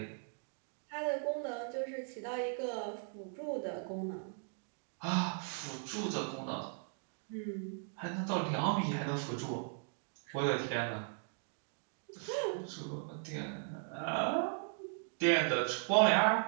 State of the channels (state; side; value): silent; left; 53 dB below the other